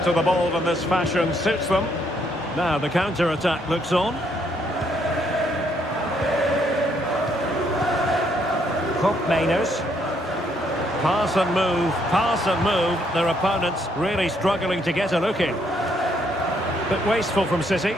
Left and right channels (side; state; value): both; normal; correlation 0.71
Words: to the ball in this fashion suits them. Now the counter-attack looks on. Mainers. Pass and move, pass and move. Their opponents really struggling to get a look in. Bit wasteful from City.